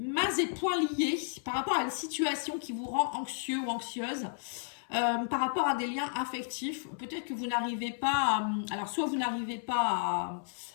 et poings liés par rapport à une situation qui vous rend anxieux ou anxieuse, par rapport à des liens affectifs. Peut-être que vous n'arrivez pas alors soit vous n'arrivez pas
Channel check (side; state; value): right; silent; 56 dB below the other